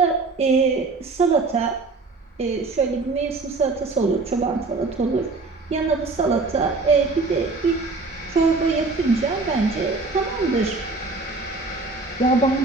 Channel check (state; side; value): quieter; left; 3.7 dB